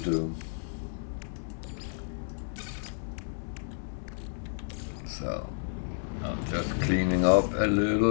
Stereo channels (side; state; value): right; silent; digital silence